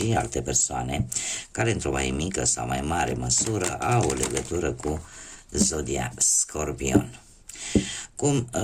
alte persoane care într-o mai mică sau mai mare măsură au o legătură cu Zodia Scorpion. Cum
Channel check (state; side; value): identical; both; correlation 1.00